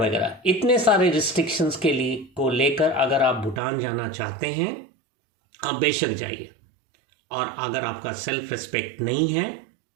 इतने सारे रिस्ट्रिक्शंस के लिए को लेकर अगर आप भूटान जाना चाहते हैं, आप बेशक जाइए। और अगर आपका सेल्फ रिस्पेक्ट नहीं है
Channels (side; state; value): left; drops out; at 3.6 s